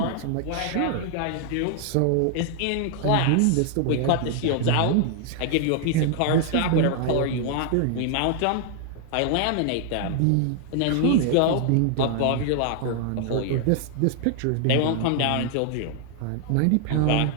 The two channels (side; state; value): both; different; correlation 0.00